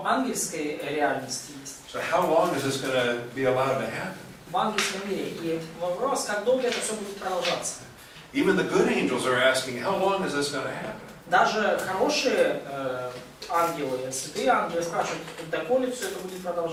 ангельской реальности есть. So how long is this going to be allowed to happen? В ангельском мире. И вопрос, как долго это все будет продолжаться. Even the good angels are asking, how long is this going to happen? Даже хорошие ангелы, святые ангелы спрашивают, доколе все это будет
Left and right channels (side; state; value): both; identical; correlation 1.00